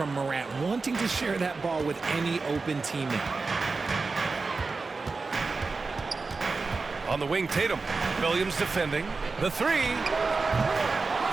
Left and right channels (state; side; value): quieter; left; 4.1 dB